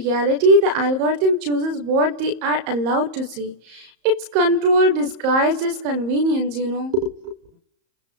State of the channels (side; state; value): left; late; 34 ms